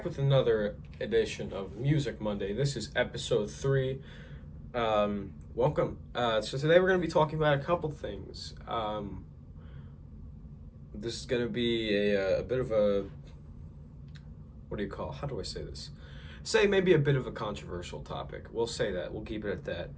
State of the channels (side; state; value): both; identical; correlation 1.00